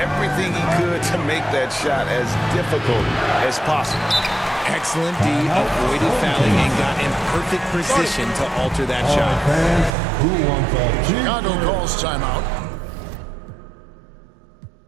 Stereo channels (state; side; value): drops out; left; at 9.9 s